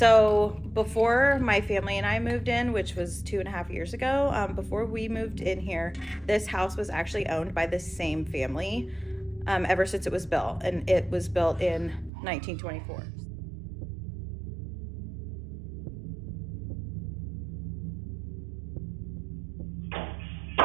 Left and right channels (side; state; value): left; drops out; at 12.1 s